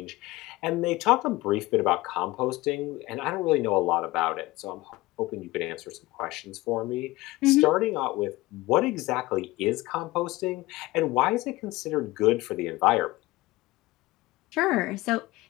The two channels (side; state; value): right; quieter; 19.7 dB